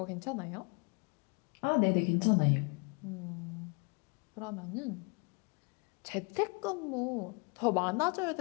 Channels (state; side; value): quieter; right; 33.1 dB